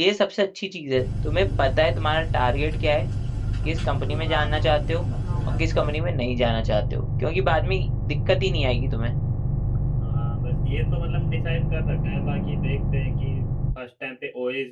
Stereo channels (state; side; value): identical; both; correlation 1.00